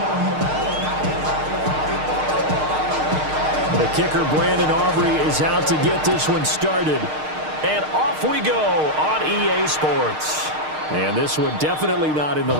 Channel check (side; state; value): left; late; 6.5 ms